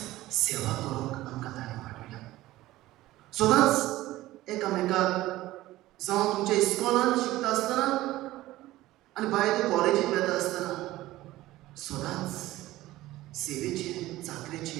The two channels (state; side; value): quieter; left; 16.6 dB